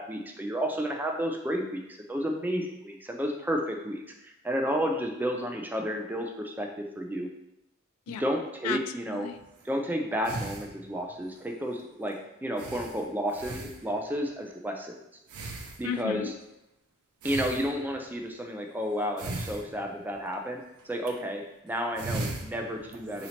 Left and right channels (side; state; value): both; normal; correlation 0.65